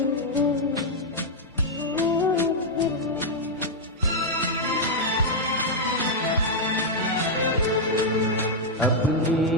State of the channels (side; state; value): both; normal; correlation -0.03